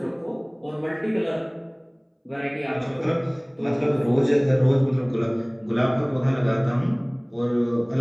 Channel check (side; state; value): both; identical; correlation 1.00